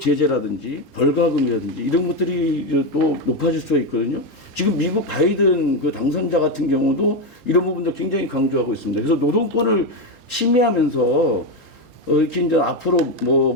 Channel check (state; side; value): normal; both; correlation 0.10